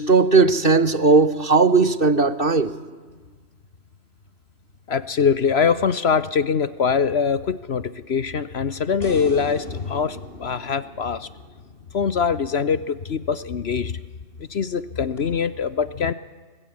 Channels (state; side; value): late; right; 2.6 ms